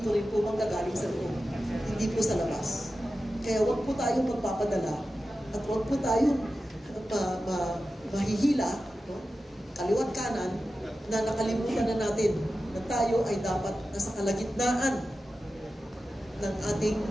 rin po manggagaling sa loob. Hindi po sa labas. Kaya huwag po tayong magpapadala at huwag po tayong mahihila, no? Kaliwat kanan, na nakalimutan na natin na tayo ay dapat nasa kalagitnaan ng ating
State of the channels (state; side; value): normal; both; correlation 0.93